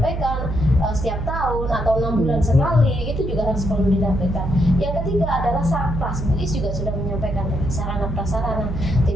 setiap tahun atau 6 bulan sekali itu juga harus perlu dilakukan. Yang ketiga adalah sarpras. Bu Is juga sudah menyampaikan sarana prasarana.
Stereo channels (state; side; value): noise; right; hum, 4 dB below the sound